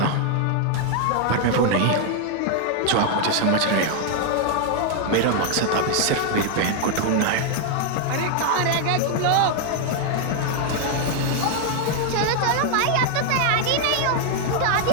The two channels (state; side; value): different; both; correlation 0.00